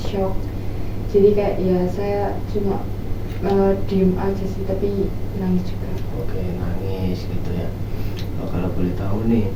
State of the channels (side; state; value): both; identical; correlation 1.00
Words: shock. Jadi kayak ya saya cuma diem aja sih, tapi nangis juga. Oke, nangis gitu ya. Kalau boleh tahu nih,